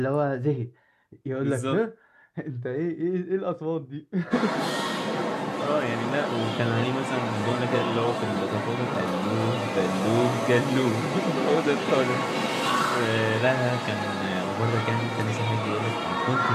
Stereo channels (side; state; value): both; identical; correlation 1.00